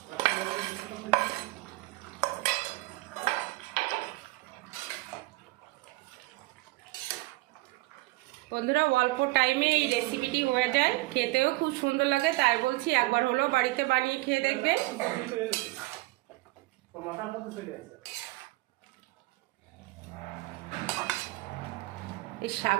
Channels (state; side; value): quieter; left; 21.5 dB